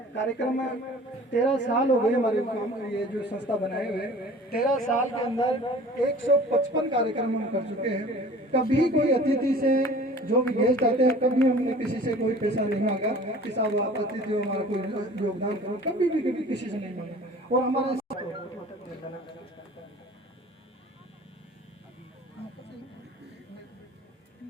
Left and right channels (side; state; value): both; normal; correlation 0.46